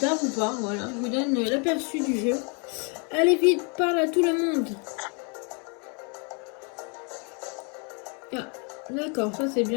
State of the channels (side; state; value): right; quieter; 35.9 dB